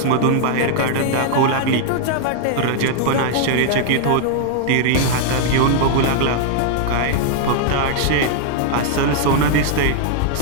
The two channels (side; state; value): both; different; correlation 0.00